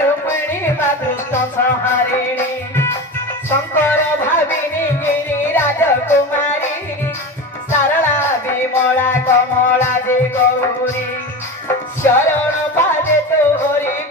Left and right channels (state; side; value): normal; both; correlation 0.26